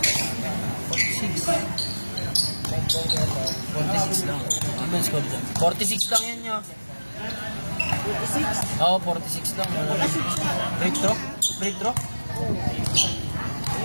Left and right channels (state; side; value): inverted; both; correlation -1.00